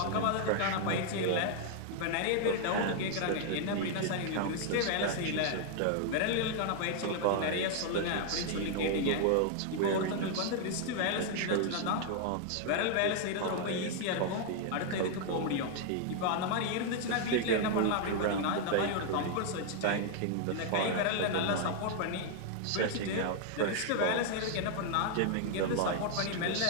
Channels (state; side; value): different; both; correlation 0.00